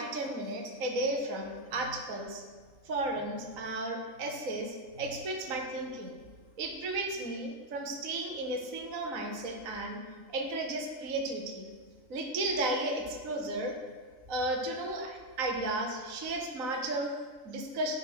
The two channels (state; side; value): late; left; 3.9 ms